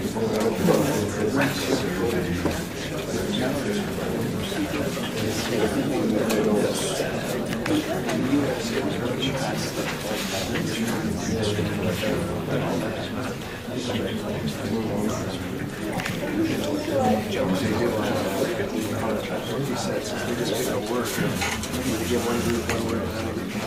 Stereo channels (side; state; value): both; identical; correlation 1.00